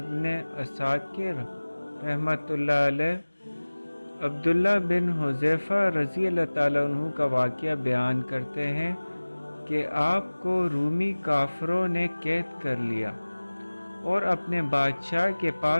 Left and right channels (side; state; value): both; inverted; correlation -1.00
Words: عساکر رحمۃ اللہ علیہ عبداللہ بن حذیفہ رضی اللہ تعالیٰ عنہ کا واقعہ بیان کرتے ہیں کہ آپ کو رومی کافروں نے قید کر لیا اور اپنے بادشاہ کے